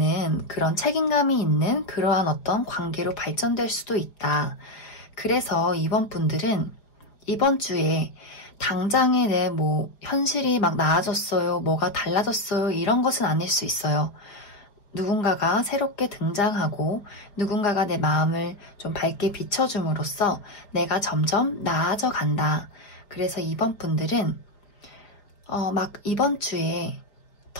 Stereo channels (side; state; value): right; late; 4.9 ms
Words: 그런 책임감이 있는 그러한 어떤 관계로 발전될 수도 있다. 그래서 이번 분들은 이번 주에 당장에 내 현실이 막 나아졌어요, 뭐가 달라졌어요, 이런 것은 아닐 수 있어요. 누군가가 새롭게 등장하고 누군가가 내 마음을 좀 밝게 비춰줌으로써 내가 점점 나아져 간다. 그래서 이번 분들은 막 이번 주에